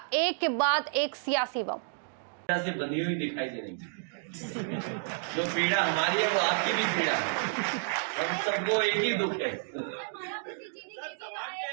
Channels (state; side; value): silent; left; digital silence